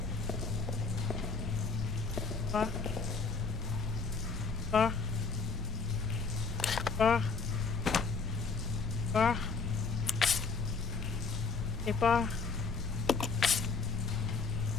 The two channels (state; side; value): quieter; right; 4.8 dB